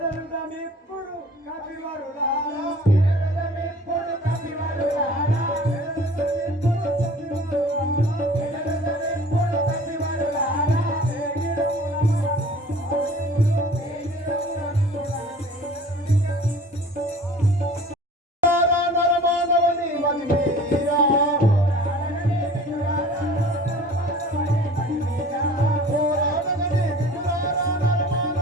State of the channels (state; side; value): normal; both; correlation 0.46